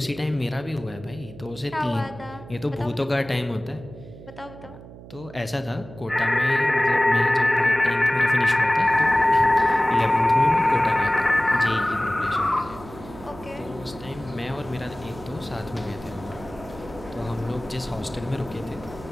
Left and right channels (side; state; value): right; noise; hum, 17 dB below the sound